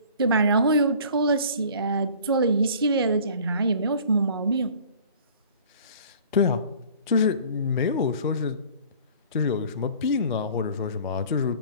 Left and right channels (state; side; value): inverted; both; correlation -0.48